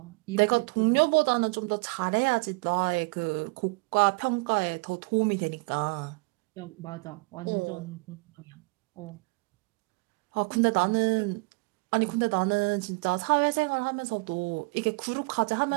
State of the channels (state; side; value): quieter; left; 28.4 dB